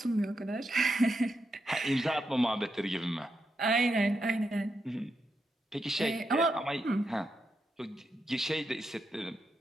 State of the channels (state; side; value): normal; both; correlation 0.84